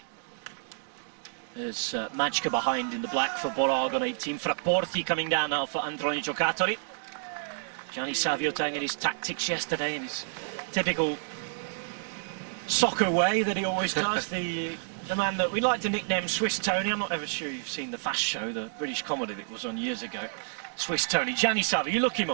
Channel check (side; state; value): left; silent; digital silence